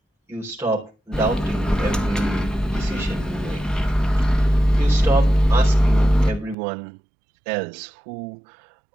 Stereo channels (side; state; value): left; drops out; at 6.6 s